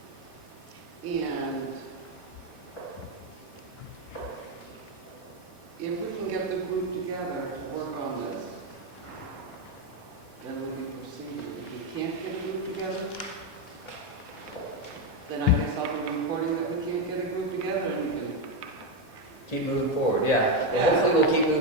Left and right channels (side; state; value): left; late; 3.2 ms